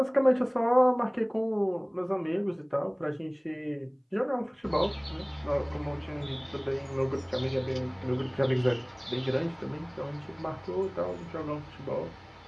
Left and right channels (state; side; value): identical; both; correlation 1.00